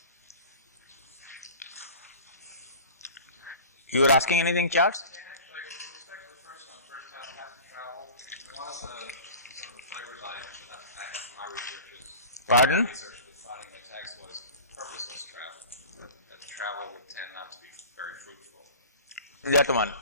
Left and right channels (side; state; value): both; inverted; correlation -0.39